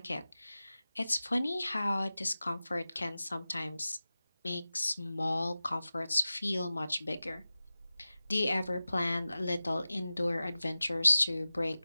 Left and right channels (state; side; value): inverted; both; correlation -0.96